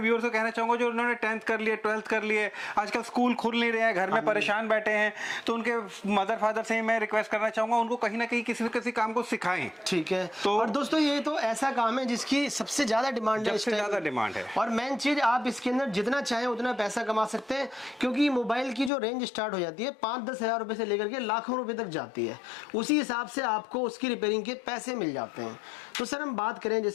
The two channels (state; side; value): drops out; right; at 18.9 s